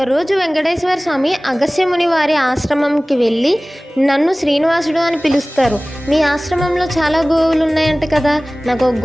వెంకటేశ్వర స్వామి అగస్త్యముని వారి ఆశ్రమంకి వెళ్ళి నన్ను శ్రీనివాసుడు అని పిలుస్తారు. మీ ఆశ్రమంలో చాలా గోవులు ఉన్నాయంట కదా, నాకు ఒక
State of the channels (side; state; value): both; normal; correlation 0.98